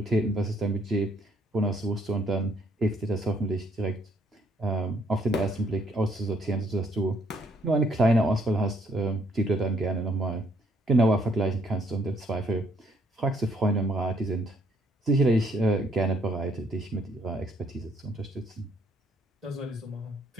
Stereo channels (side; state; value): both; normal; correlation 0.68